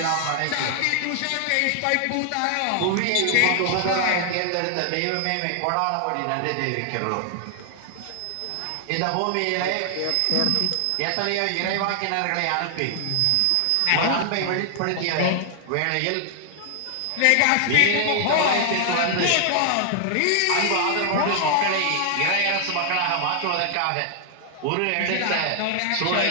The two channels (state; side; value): different; both; correlation 0.00